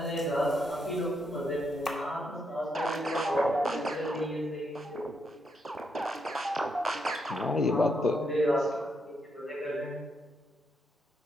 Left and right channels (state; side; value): normal; both; correlation 0.79